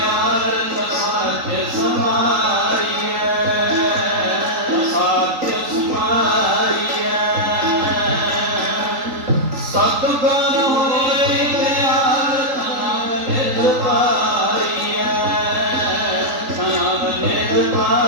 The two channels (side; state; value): left; late; 3.8 ms